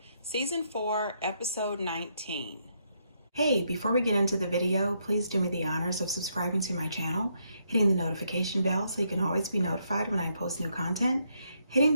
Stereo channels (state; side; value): inverted; both; correlation -0.76